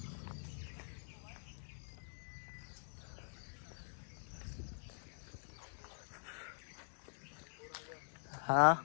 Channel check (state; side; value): silent; right; digital silence